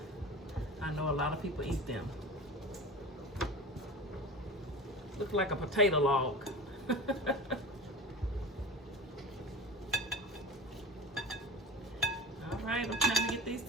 I know a lot of people eat them. Looks like a potato log. All right, I'm trying to get these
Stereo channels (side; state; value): both; normal; correlation 0.32